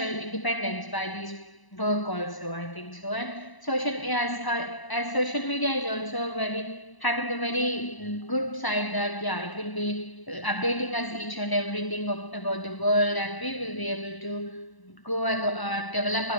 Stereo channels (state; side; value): late; right; 1.0 ms